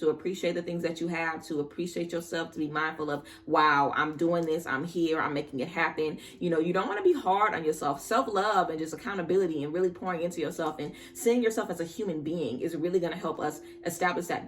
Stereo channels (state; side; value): identical; both; correlation 1.00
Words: appreciate the things that you have, to appreciate yourself, to be mindful of, wow, I'm doing this, I'm here, I'm making it happen. You don't want to be hard on yourself. Self-love and just accountability and really pouring into yourself and seeing yourself as a human being is really going to help us establish that